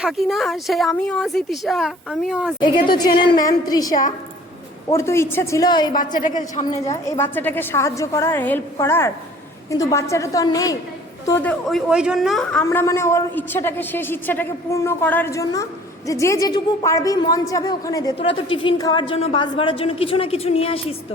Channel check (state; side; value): normal; both; correlation 0.51